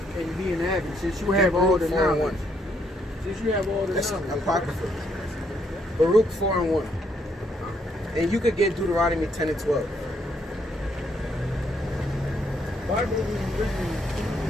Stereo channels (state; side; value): normal; both; correlation 0.73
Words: be an advocate, since you have all the knowledge? Since you have all the knowledge. Apocrypha. Baruch 4:1. And you could get Deuteronomy 10 and 12. Bible is written.